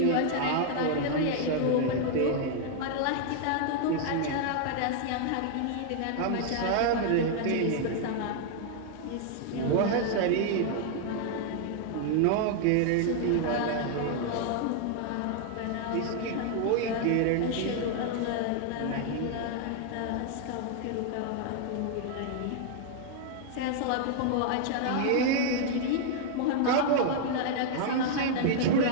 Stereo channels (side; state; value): both; different; correlation 0.00